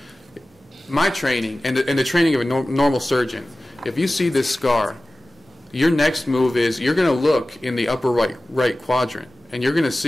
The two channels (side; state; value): both; normal; correlation 0.96